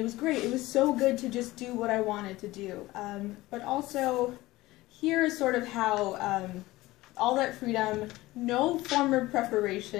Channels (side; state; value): right; quieter; 18.5 dB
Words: was great. It was so good to just do what I wanted to do. But also, here is sort of how all that freedom, no former